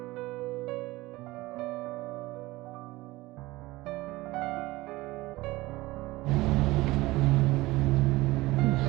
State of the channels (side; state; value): left; quieter; 19.6 dB